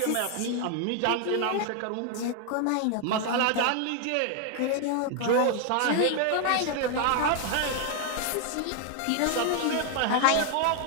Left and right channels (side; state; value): both; different; correlation 0.00